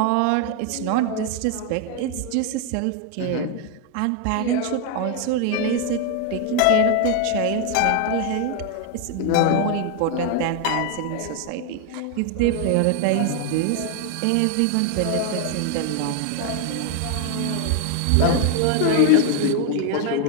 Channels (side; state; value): both; different; correlation 0.01